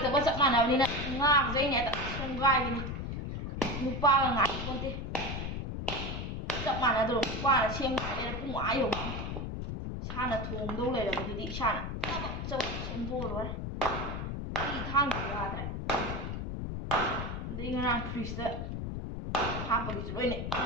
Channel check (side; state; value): left; noise; rumble, 4 dB below the sound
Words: ꯆꯞ ꯃꯥꯟꯅꯕꯅꯤꯅ ꯉꯥꯒꯁꯦ ꯑꯩꯅ ꯍꯦꯛꯇ ꯁꯦꯝꯒꯥꯏꯕꯅꯤ ꯅꯨꯄꯥꯒ ꯉꯥꯏꯄꯣꯟꯇꯦ ꯆꯞ ꯃꯥꯟꯅꯗ꯭ꯔꯣ ꯅꯨꯄꯥꯅ ꯁꯦꯝꯒꯥꯏꯔꯦ ꯄꯨꯡ ꯑꯥ ꯌꯧꯅꯤ ꯏꯁꯥꯅ ꯊꯣꯡꯗꯧ ꯂꯩꯔꯕꯗꯨꯗꯤ ꯏꯁꯥꯅ ꯆꯕꯛ ꯁꯦꯝꯗꯣꯛꯑ ꯂꯣꯏꯔꯦ ꯑꯩ ꯊꯥꯡꯁꯨ ꯌꯥꯗ꯭ꯔꯦ ꯑꯗꯩ ꯉꯔꯥꯡ ꯐ꯭ꯔꯤꯖꯇ ꯍꯥꯞꯄꯒꯤꯁꯨ ꯂꯣꯏꯅ